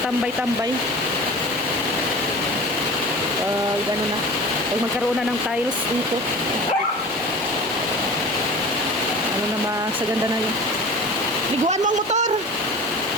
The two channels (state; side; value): normal; both; correlation 0.38